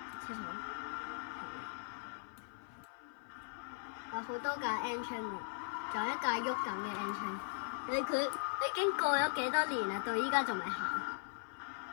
車廠，有好多架 N 青喎，仲有一架喐緊嘅 N 青。佢已經過咗幾多年啦，到依家仲未行。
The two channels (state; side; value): silent; right; 52 dB below the other